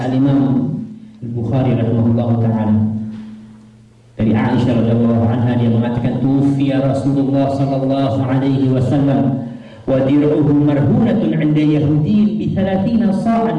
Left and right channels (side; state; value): both; identical; correlation 1.00